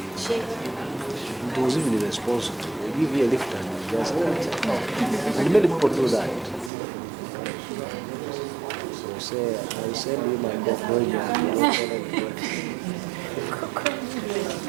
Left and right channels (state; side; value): drops out; left; at 6.7 s